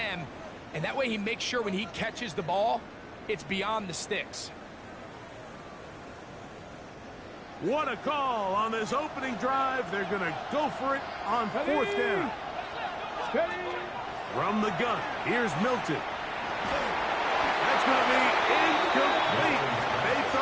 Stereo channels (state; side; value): identical; both; correlation 1.00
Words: and that way he makes sure when he catches the ball, it's beyond the sticks. What a call on this opening drive. They're going to go for it on 4th down. From the gun, here's Milton. That's going to be incomplete. They